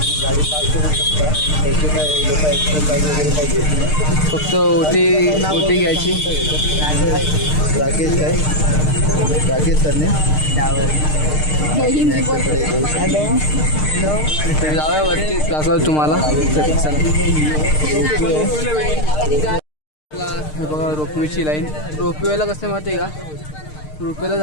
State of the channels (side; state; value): right; late; 6.6 ms